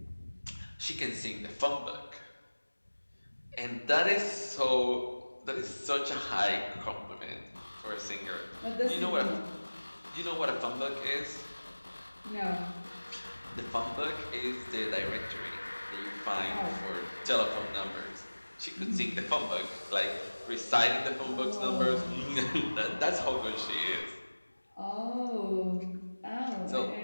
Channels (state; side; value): inverted; both; correlation -1.00